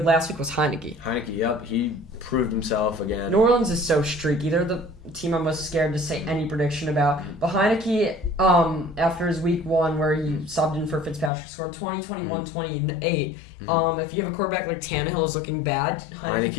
last week was Heinicke. Heinicke, yep. He proved himself again. New Orleans is so streaky. They're the team I'm most scared to say any prediction about. But Heinicke, after his week 1 where he subbed in for Fitzpatrick, scored 20, 21, 28. If you have a quarterback like Tannehill is looking bad, Heinicke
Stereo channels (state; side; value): drops out; right; at 11.3 s